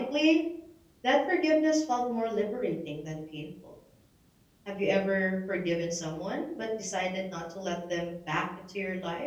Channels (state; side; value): identical; both; correlation 1.00